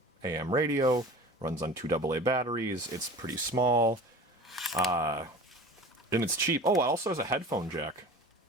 AM radio. Runs on 2 AA batteries. It's pretty small. And it's cheap. Oh, it also has a headphone jack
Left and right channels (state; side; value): normal; both; correlation 0.39